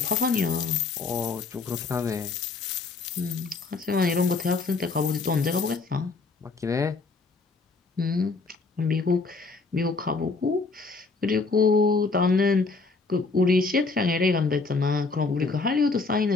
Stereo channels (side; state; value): right; quieter; 4.1 dB